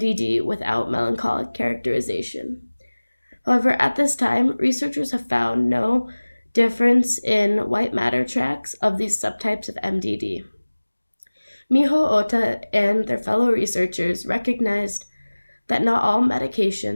without melancholic characterization. However, at this time, researchers have found no difference in white matter tracts of these subtypes of MDD. Miho Ota and their fellow researchers recognized that not all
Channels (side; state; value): both; inverted; correlation -1.00